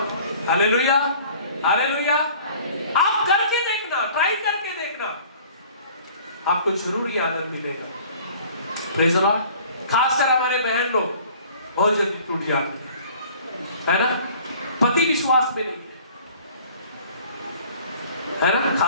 hallelujah, hallelujah. आप करके देखना, ट्राई करके देखना, आपको जरूर ये आनंद मिलेगा। Praise the Lord. खासकर हमारे बहन लोग बहुत जल्दी टूट जाते हैं, है ना? पति विश्वास में नहीं है ना,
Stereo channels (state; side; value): inverted; both; correlation -0.50